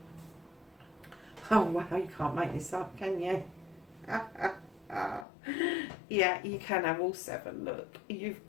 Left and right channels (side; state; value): right; drops out; at 5.2 s